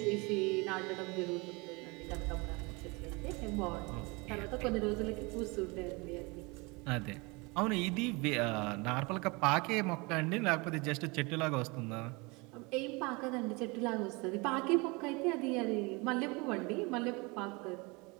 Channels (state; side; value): quieter; left; 27.2 dB